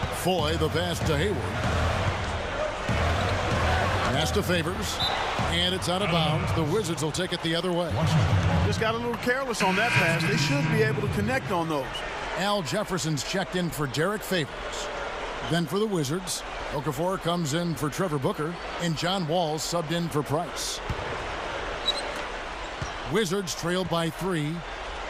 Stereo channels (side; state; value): both; identical; correlation 1.00